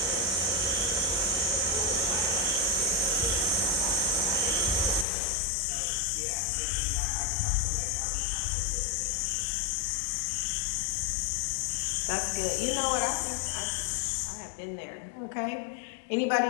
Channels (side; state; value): right; drops out; at 5.1 s